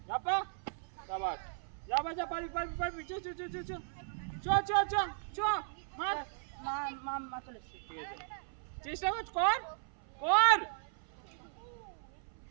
शाबाश जा पारी चो मार চলে এসেছে ঠিক আছে চেষ্টা কর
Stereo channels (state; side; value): silent; left; 53 dB below the other